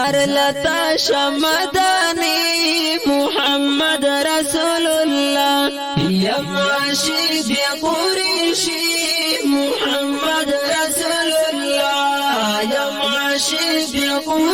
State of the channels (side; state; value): both; identical; correlation 1.00